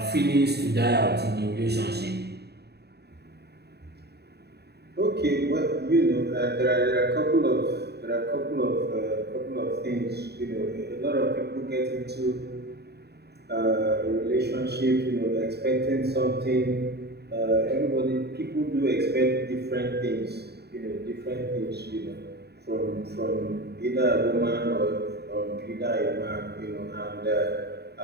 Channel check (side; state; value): left; late; 0.48 ms